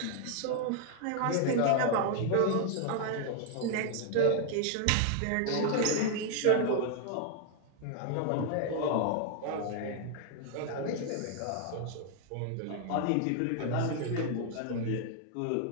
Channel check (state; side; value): different; both; correlation 0.00